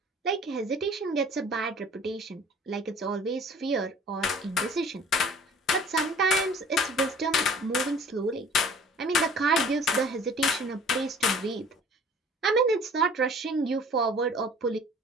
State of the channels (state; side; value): normal; both; correlation 0.50